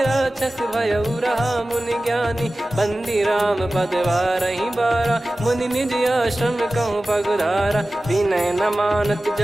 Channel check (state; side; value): normal; both; correlation 0.96